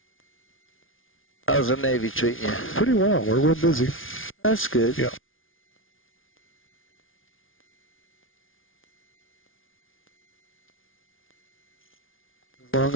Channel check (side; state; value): right; late; 0.58 ms